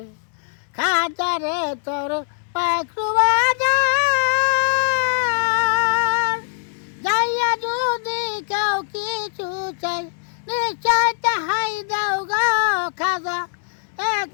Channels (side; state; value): right; silent; 65 dB below the other